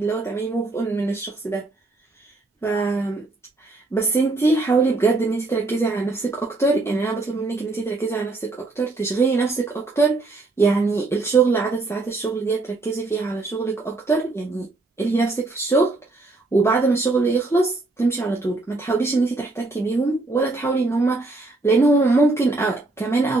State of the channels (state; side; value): quieter; left; 3.3 dB